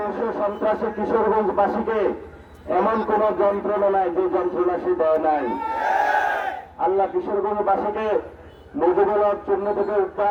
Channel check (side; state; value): both; identical; correlation 1.00